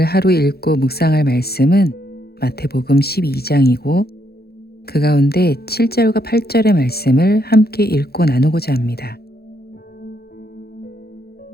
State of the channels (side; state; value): right; late; 0.46 ms